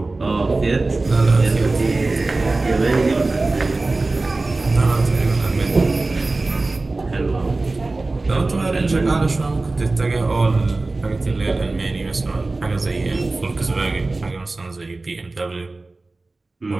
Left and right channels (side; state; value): left; quieter; 3.3 dB